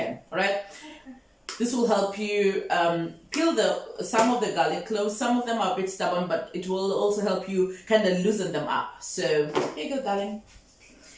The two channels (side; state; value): both; identical; correlation 1.00